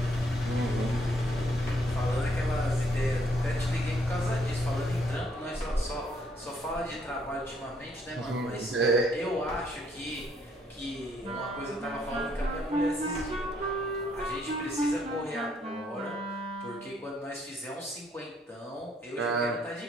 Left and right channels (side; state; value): both; normal; correlation 0.69